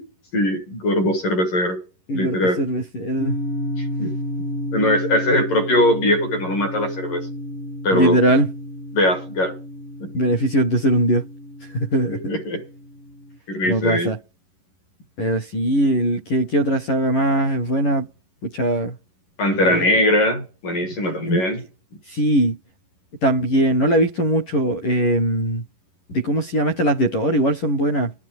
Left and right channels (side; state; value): right; late; 11 ms